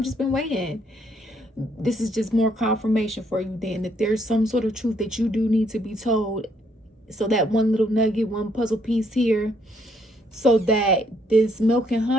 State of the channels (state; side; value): normal; both; correlation 0.70